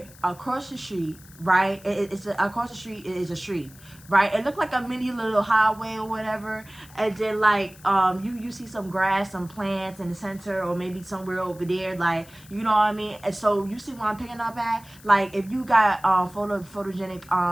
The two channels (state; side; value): noise; left; hiss, 23 dB below the sound